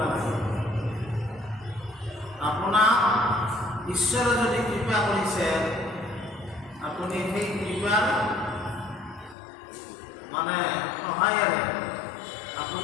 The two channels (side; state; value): right; drops out; at 9.3 s